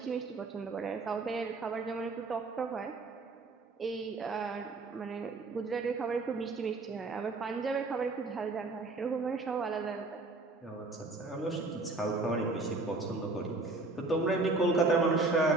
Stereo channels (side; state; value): left; quieter; 3.4 dB